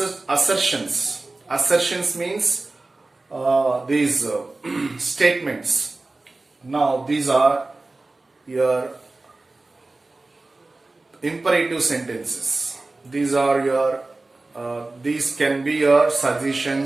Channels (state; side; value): quieter; left; 3.2 dB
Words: Assertions means these statements. Now these are your imperative sentences. These are your these can be your